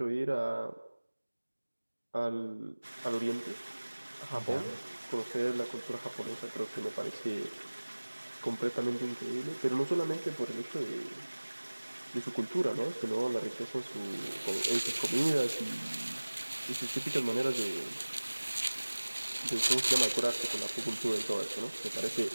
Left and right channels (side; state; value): both; inverted; correlation -1.00